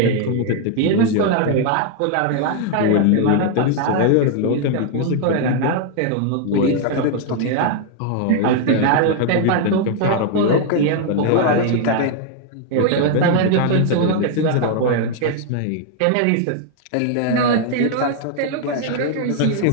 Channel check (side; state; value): both; different; correlation 0.00